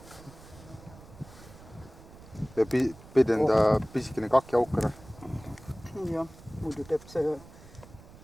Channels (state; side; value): noise; right; rumble, 20 dB below the sound